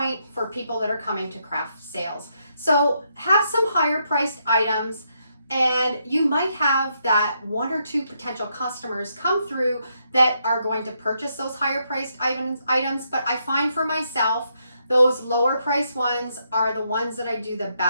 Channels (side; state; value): both; inverted; correlation -0.78